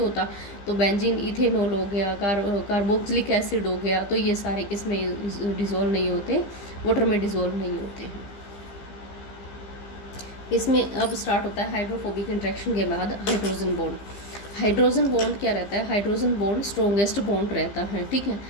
तो बेंजीन इथेनॉल हो गया, कार्बोक्सिलिक एसिड हो गया, तो ये सारे किस में डिजोल्व नहीं होते, वाटर में डिजोल्व नहीं होते हैं. इसमें अब स्टार्ट होता है हाइड्रोफोबिक इंट्रैक्शन के बाद हाइड्रोजन बॉन्ड. हाइड्रोजन बॉन्ड क्या रहता है, हाइड्रोजन बॉन्ड स्ट्रॉन्गेस्ट बॉन्ड रहता है, ठीक है.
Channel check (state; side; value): late; right; 15 ms